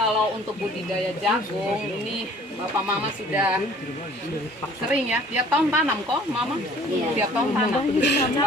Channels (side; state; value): both; normal; correlation 0.52